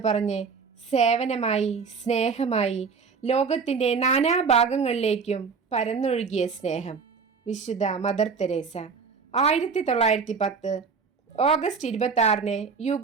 പറഞ്ഞ് സേവനമായി, സ്നേഹമായി ലോകത്തിൻ്റെ നാനാഭാഗങ്ങളിലേക്കും പരന്നൊഴുകിയ സ്നേഹം. വിശുദ്ധ മദർ തെരേസ 1910 ഓഗസ്റ്റ് 26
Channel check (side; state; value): left; quieter; 5.4 dB